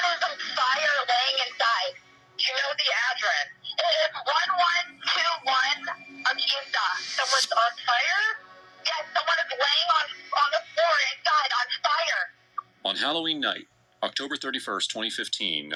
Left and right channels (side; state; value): both; identical; correlation 1.00